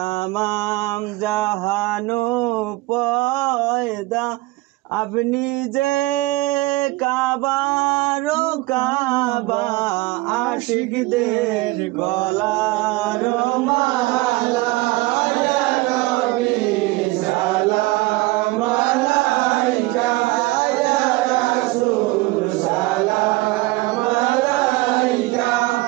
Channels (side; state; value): left; quieter; 20.6 dB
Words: জাহানো পয়দা আপনি যে কাবারো কাবা আশিকদের গলার মালা ইয়া নবী সালাম আলাইকা ইয়া রাসূল সালাম আলাইকা